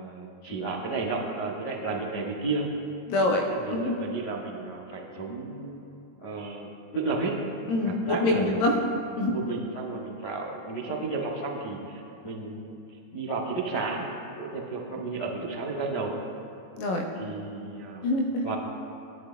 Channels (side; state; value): right; late; 22 ms